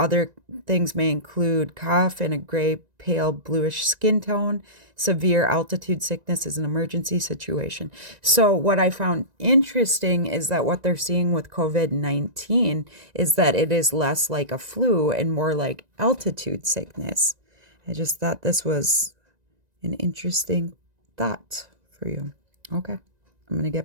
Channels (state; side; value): late; left; 1.9 ms